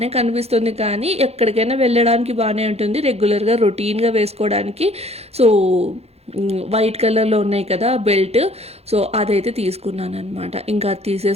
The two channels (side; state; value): left; late; 0.30 ms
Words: కనిపిస్తుంది కానీ ఎక్కడికైనా వెళ్ళడానికి బాగానే ఉంటుంది, రెగ్యులర్గా రొటీన్గా వేసుకోవడానికి. సో వైట్ కలర్లో ఉన్నాయి కదా బెల్ట్, సో అదైతే తీసుకున్నాను అనమాట. ఇంకా అది